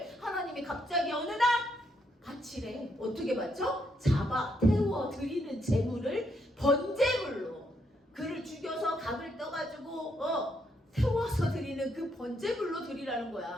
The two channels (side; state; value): both; normal; correlation 0.76